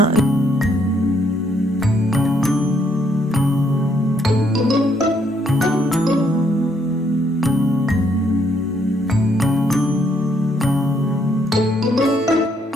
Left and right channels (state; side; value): normal; both; correlation 0.71